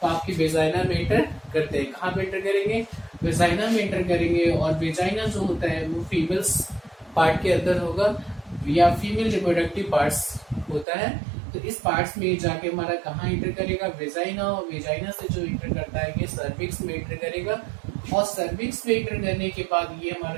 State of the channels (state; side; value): drops out; left; at 10.9 s